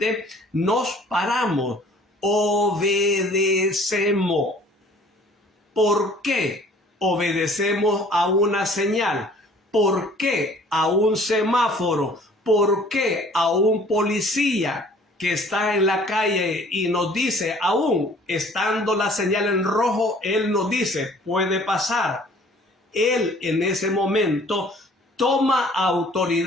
nos paramos, obedecemos. ¿Por qué obedecemos a una señal? ¿Por qué a un semáforo? ¿Por qué a un policía que está en la calle y nos dice, aún estando la señal en rojo, él nos dice, puede pasar? Él en ese momento toma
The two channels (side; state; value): both; normal; correlation 0.53